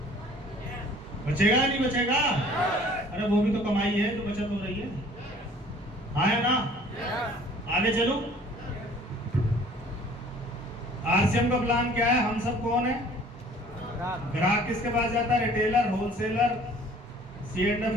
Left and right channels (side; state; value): both; normal; correlation 0.52